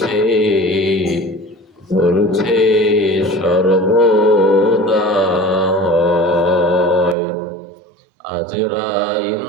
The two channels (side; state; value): left; drops out; at 7.2 s